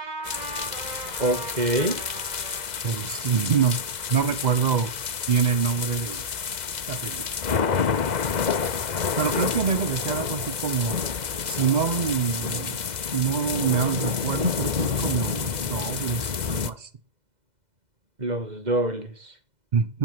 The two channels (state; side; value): late; left; 2.0 ms